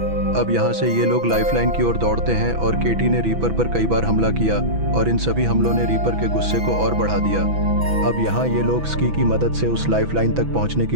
अब यहाँ से ये लोग लाइफलाइन की ओर दौड़ते हैं और केटी ने रीपर पर कई बार हमला किया और इन सभी हमलों ने रीपर के गुस्से को और बढ़ा दिया। अब यहाँ ये लोग स्की की मदद से उस लाइफलाइन तक पहुँचने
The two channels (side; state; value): left; late; 6.1 ms